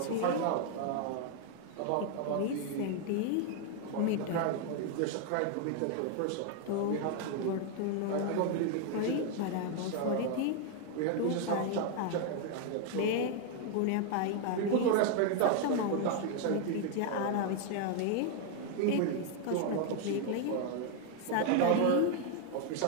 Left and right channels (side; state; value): both; different; correlation 0.00